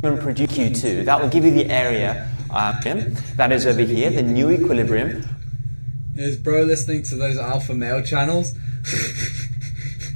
and producer Q2. That will give you the area that is over here, the new equilibrium. Is bro listening to those alpha male channels?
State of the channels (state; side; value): inverted; both; correlation -1.00